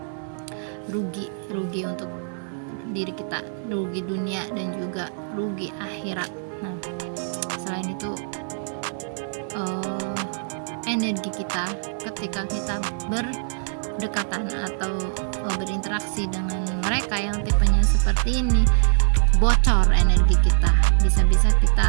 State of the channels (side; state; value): left; silent; digital silence